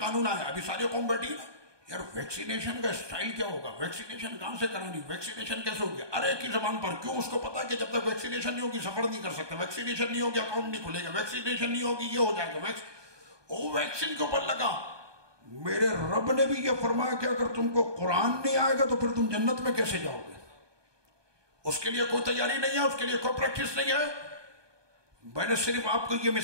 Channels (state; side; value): late; left; 1.2 ms